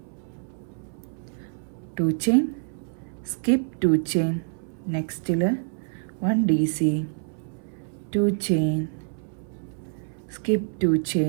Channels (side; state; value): left; silent; 60 dB below the other